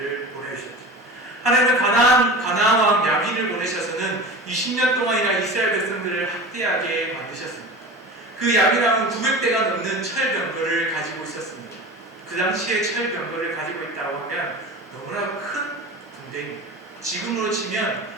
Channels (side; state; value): both; normal; correlation 0.33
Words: 보내주셨죠. 하나님은 가나안 왕 야빈을 보내셔서는 20년 동안이나 이스라엘 백성들을 학대하게 만드셨습니다. 그 야빈 왕은 900대가 넘는 철병거를 가지고 있었습니다. 그 당시에 철병거를 가지고 있다고 하면 너무나 큰 군대입니다. 지금으로 치면